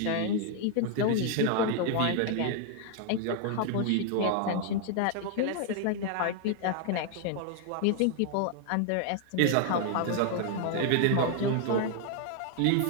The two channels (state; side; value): different; both; correlation 0.00